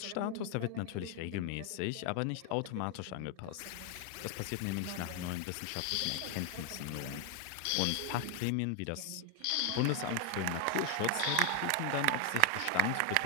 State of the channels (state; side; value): different; both; correlation 0.00